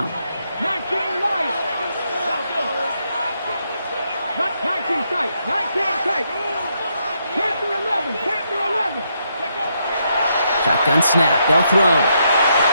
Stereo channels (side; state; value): both; inverted; correlation -0.78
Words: 19 right. 19 tight. 19 tight. Panther 11. Panther 11. Shotgun snap. They'll throw.